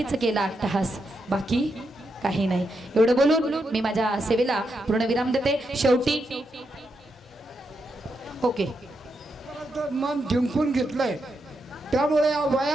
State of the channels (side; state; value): both; normal; correlation 0.83